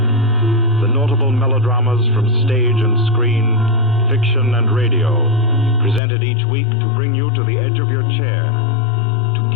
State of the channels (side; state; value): right; drops out; at 6.0 s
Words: The notable melodramas from stage and screen, fiction and radio, presented each week to bring you to the edge of your chair, to